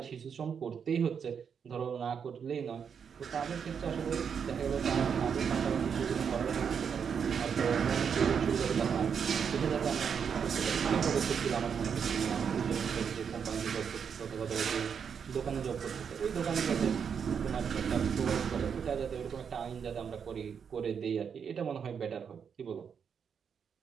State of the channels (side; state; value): left; quieter; 7.0 dB